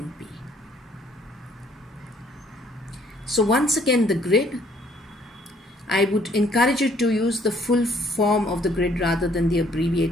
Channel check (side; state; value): both; normal; correlation 0.62